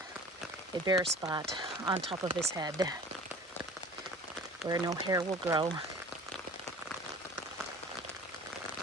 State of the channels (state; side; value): normal; both; correlation 0.43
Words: a bare spot on top of his head where no hair will grow.